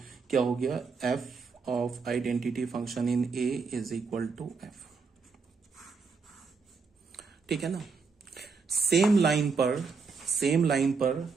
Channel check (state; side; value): quieter; left; 5.0 dB